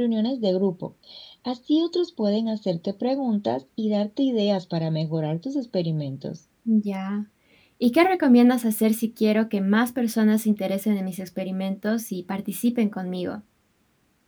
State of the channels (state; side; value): identical; both; correlation 1.00